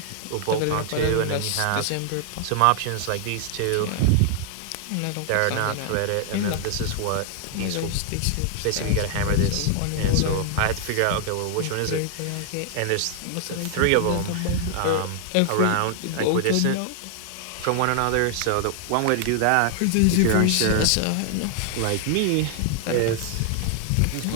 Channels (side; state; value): both; different; correlation 0.00